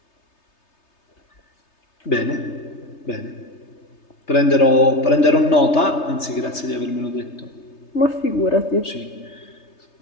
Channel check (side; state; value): right; late; 3.3 ms